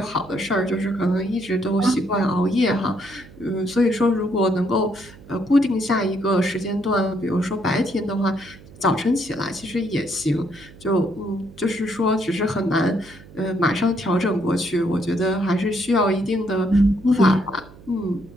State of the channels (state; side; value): noise; right; hum, 21 dB below the sound